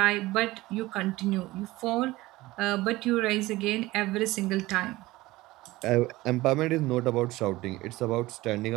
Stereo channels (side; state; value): left; quieter; 18.9 dB